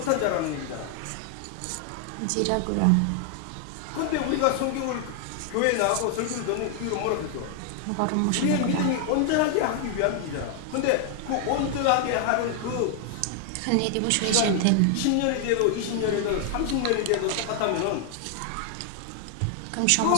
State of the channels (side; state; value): both; different; correlation 0.00